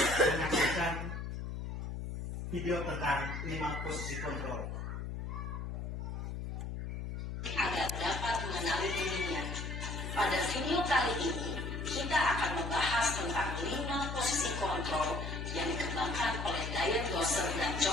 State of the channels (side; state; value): left; noise; hum, 5 dB below the sound